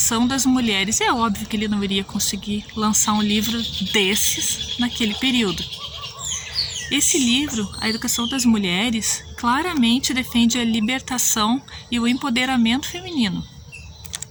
das Mulheres. É óbvio que ele não iria conseguir lançar um livro desses naquele período. Esse livro, A Educação das Mulheres, claramente defende a libertação e o empoderamento feminino,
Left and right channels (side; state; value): both; identical; correlation 1.00